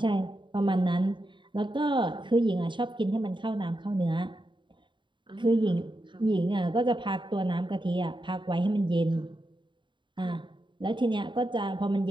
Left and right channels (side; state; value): left; late; 0.23 ms